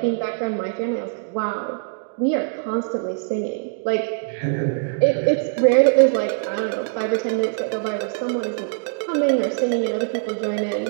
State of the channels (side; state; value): left; silent; digital silence